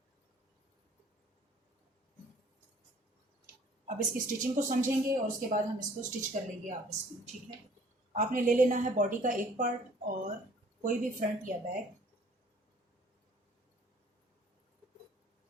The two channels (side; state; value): both; normal; correlation 0.55